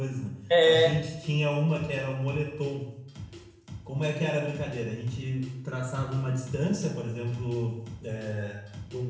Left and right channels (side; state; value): both; identical; correlation 1.00